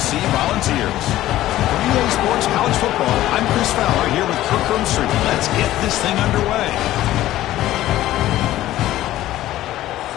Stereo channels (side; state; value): right; quieter; 14.6 dB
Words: Volunteers. For EA Sports College Football, I'm Chris Fowler here with Kirk Hermstreet. Let's get this thing underway.